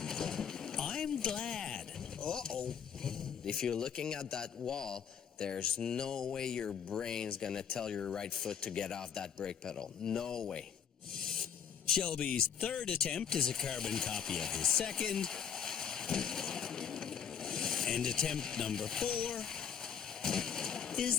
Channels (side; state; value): right; quieter; 7.9 dB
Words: I'm glad. Uh-oh. If you're looking at that wall, there's no way your brain's gonna tell your right foot to get off that brake pedal. No way. Shelby's third attempt is a carbon copy of his second. And attempt number 4 is